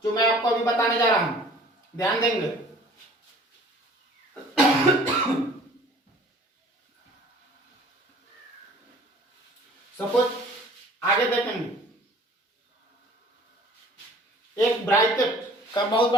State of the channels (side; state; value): both; normal; correlation 0.51